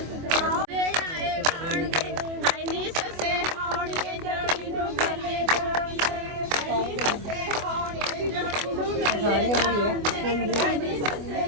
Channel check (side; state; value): left; late; 24 ms